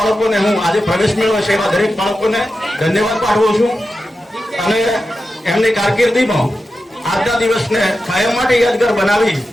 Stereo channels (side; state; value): both; normal; correlation 0.91